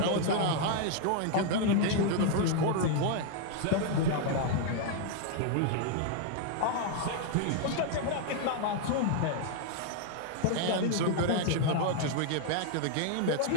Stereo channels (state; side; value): different; both; correlation 0.00